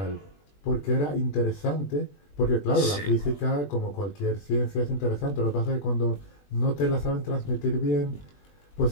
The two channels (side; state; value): right; late; 20 ms